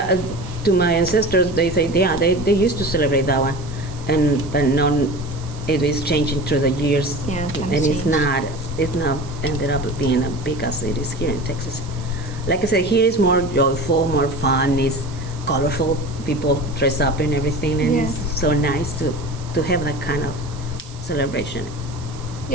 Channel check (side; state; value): right; noise; hiss, 21 dB below the sound